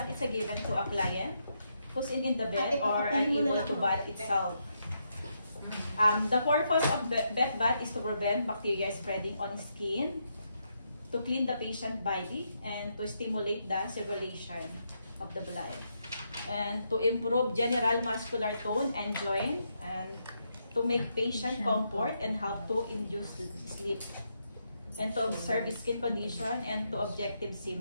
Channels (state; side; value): inverted; both; correlation -0.80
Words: is a given to a client who's in the bed or unable to bath itself. The purpose of bed bath is to prevent bacteria spreading on skin, to clean the patient body, and to stimulate the circulation of the blood, and to improve general muscular tone and joint, and to make patient comfort and help to induce sleep, and to observe skin condition and to objective